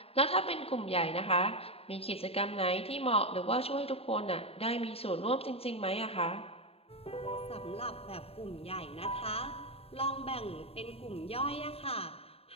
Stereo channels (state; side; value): late; right; 0.28 ms